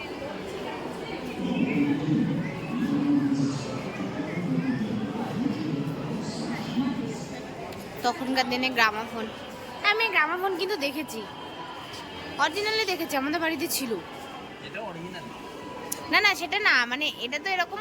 তখনকার দিনে গ্রামাফোন, আমি গ্রামাফোন কিন্তু দেখেছি, অরিজিনালি দেখেছি, আমাদের বাড়িতে ছিল। এটা অরিজিনাল না না সেটা না, মানে এটা তো এরকম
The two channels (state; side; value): identical; both; correlation 1.00